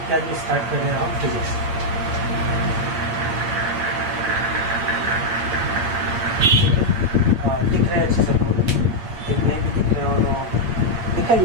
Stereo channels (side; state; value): left; late; 8.7 ms